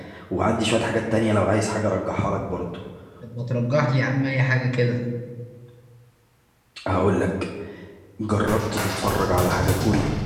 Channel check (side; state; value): both; identical; correlation 1.00